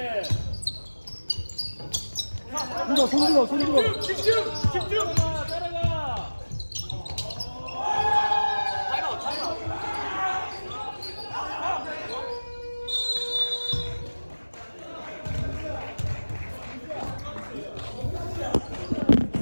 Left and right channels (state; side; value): inverted; both; correlation -1.00